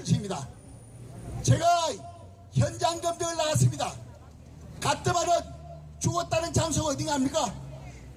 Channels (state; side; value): identical; both; correlation 1.00